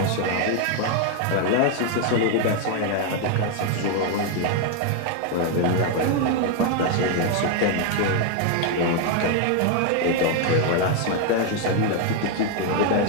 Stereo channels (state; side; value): different; both; correlation 0.01